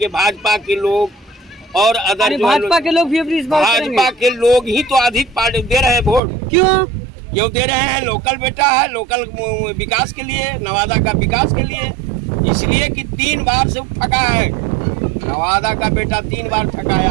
भाजपा के लोग और अदर भाजपा के लोग भी अपनी इस बात भाजपा के लोग ही तो अधिक पार्टी दे रहे हैं वोट। क्यों दे रहे हैं? लोकल बेटा है, लोकल विकास के लिए, नवादा का विकास के लिए, इसलिए कि 3 बार से ठगा है। नवादा का बेटा 3 बार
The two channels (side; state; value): left; drops out; at 6.2 s